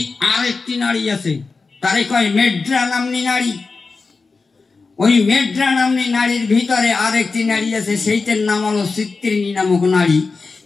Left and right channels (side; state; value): right; quieter; 4.2 dB